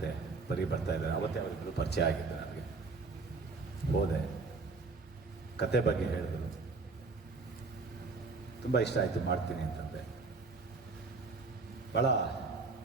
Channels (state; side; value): quieter; left; 4.0 dB